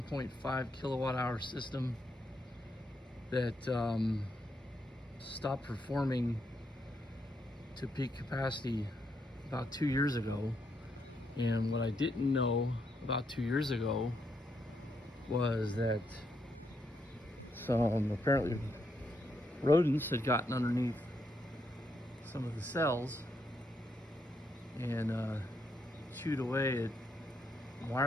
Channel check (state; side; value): normal; both; correlation 0.79